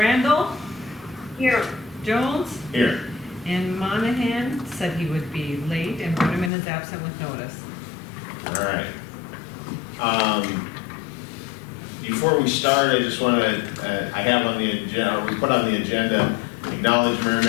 Here. Jones. Here. And Monahan said he would be late and put him in as absent with notice. All right. Before we start, I just want to, I have on the agenda, or we put on the agenda, acknowledge Mayor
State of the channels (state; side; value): drops out; right; at 6.5 s